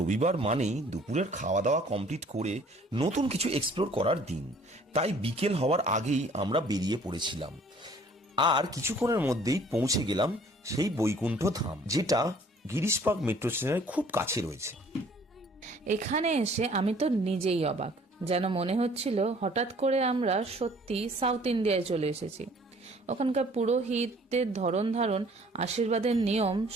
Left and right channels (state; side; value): normal; both; correlation 0.55